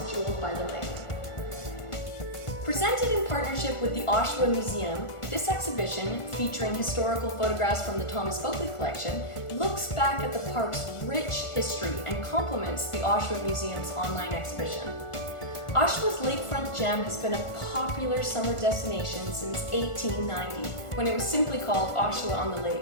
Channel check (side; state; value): right; late; 1.4 ms